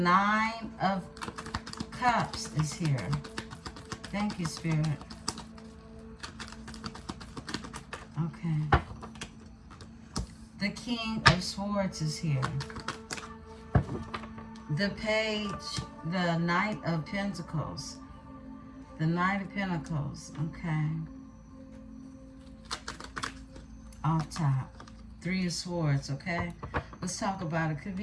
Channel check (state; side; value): identical; both; correlation 1.00